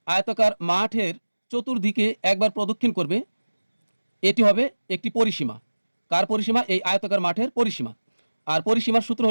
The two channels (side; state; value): both; inverted; correlation -1.00